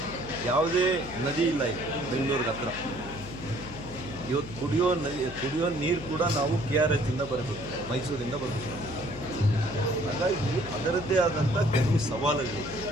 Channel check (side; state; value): left; noise; hum, 13 dB below the sound